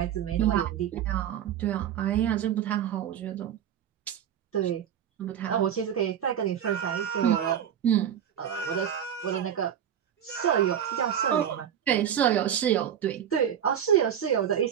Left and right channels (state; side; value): quieter; left; 9.5 dB